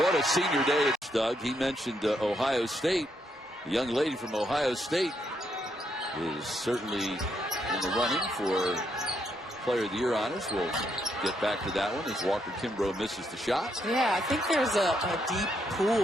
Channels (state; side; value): normal; both; correlation 0.77